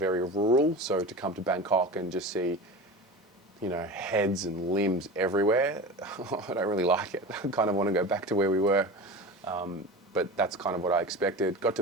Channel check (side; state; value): both; normal; correlation 0.30